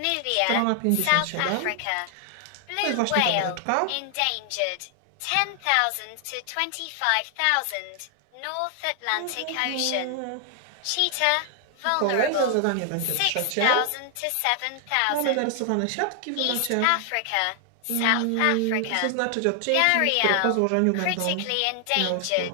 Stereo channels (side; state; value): both; different; correlation 0.00